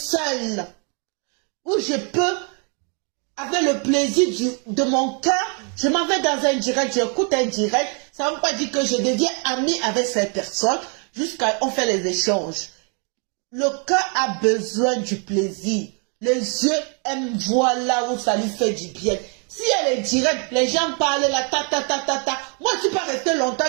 où je peux, avec le plaisir de mon cœur, je m'en vais dans un direct, j'écoute un direct, ça ne veut pas dire que je deviens amie avec cette personne, jusqu'à on fait les échanges. Le cœur a besoin du plaisir. Les yeux aiment voir là où ça lui fait du bien. Si elle est directe, les gens parlent là, ta. Moi, je ne suis pas restée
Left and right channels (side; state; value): left; quieter; 38.0 dB